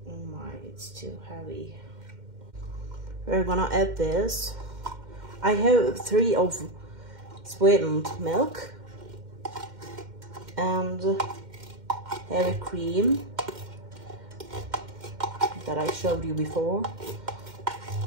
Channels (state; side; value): late; left; 2.1 ms